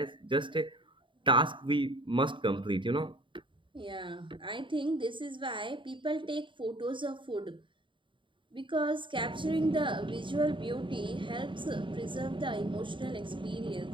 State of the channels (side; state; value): left; late; 0.24 ms